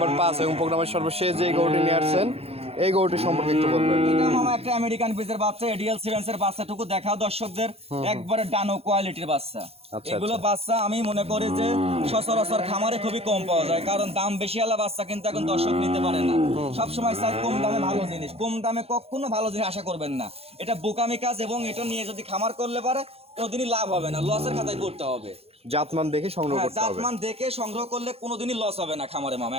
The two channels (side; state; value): left; late; 0.29 ms